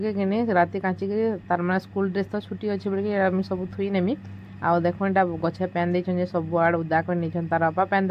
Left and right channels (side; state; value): both; identical; correlation 1.00